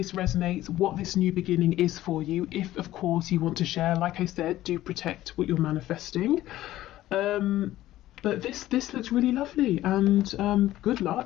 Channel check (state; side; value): quieter; right; 14.8 dB